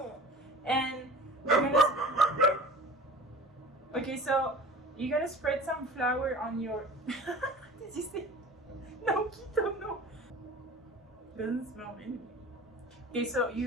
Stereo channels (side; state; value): both; normal; correlation 0.40